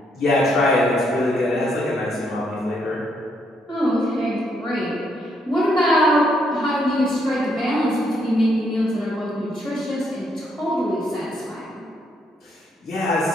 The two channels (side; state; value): both; normal; correlation 0.74